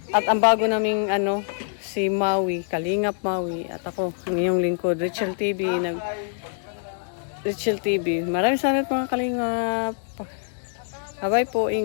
At ang bago naming ano, si Maui, Kalingap Maui, at ako, ang inyong lingkod, Richel TV, Richel TV. Maraming salamat mga Kalingap. Bye-bye po,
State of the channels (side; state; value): right; silent; digital silence